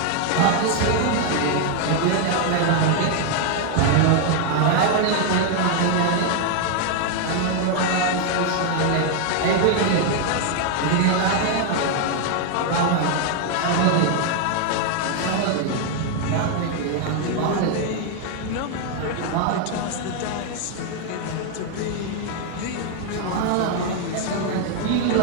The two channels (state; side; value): different; both; correlation 0.00